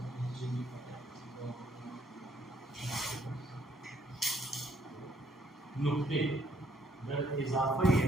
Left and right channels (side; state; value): both; normal; correlation 0.68